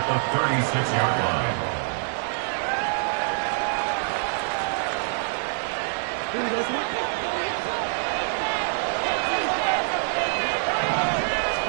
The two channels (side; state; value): left; silent; digital silence